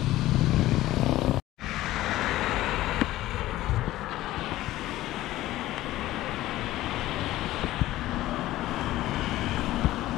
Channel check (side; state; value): right; quieter; 15.7 dB